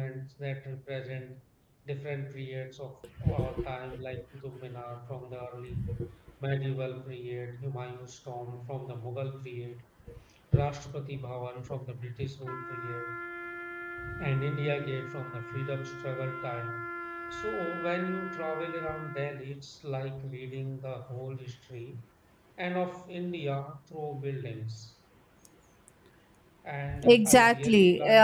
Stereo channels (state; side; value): identical; both; correlation 1.00